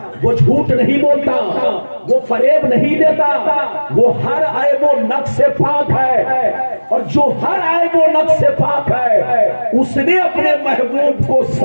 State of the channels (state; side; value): inverted; both; correlation -1.00